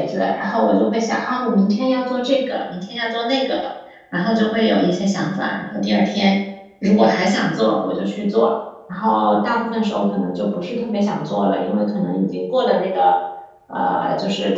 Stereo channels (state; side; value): identical; both; correlation 1.00